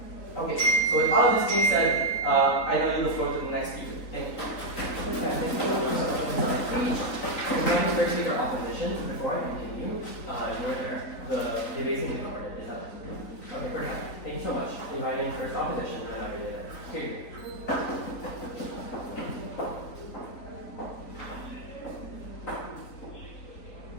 Okay, so with all of this being said, I now yield the floor to the next speaker. Thank you. Okay, thank you so much for speech. I'm going to first take our opposition before I continue. The debates in the corner. Is that okay? We're done. Thank you so much. Inviting first opposition, and I'll read it. Here you go.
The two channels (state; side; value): late; right; 3.9 ms